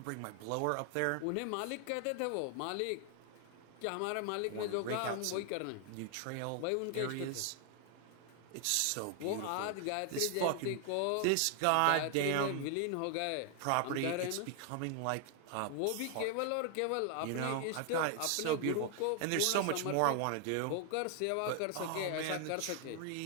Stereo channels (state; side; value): different; both; correlation 0.00